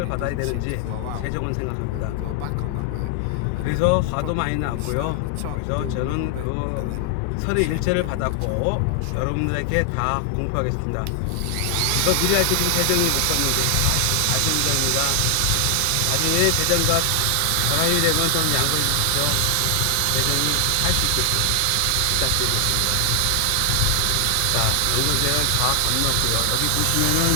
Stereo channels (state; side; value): different; both; correlation 0.00